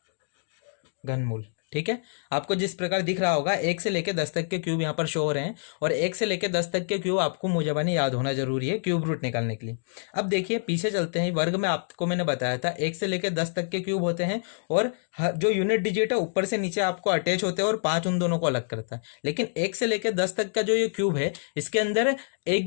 घनमूल। ठीक है, आपको जिस प्रकार दिख रहा होगा 1 से लेकर 10 तक के क्यूब यहाँ पर शो हो रहे हैं और 1 से लेकर 10 तक के क्यूब आपको मुझे याद होना जरूरी है क्यूब रूट निकालने के लिए। अब देखिए पीछे चलते हैं, वर्ग में आपको मैंने बताया था 1 से लेकर 10 तक के क्यूब होते हैं और जो यूनिट डिजिट है ऊपर से नीचे आपको अटैच होते हैं और 5 उन दोनों को अलग करता है। लेकिन 1 से लेकर 10 तक का जो ये क्यूब है इसके अंदर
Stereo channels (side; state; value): right; silent; digital silence